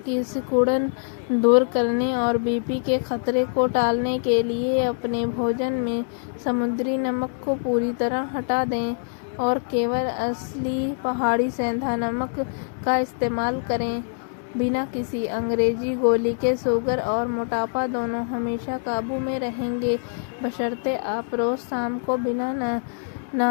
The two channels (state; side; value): silent; right; digital silence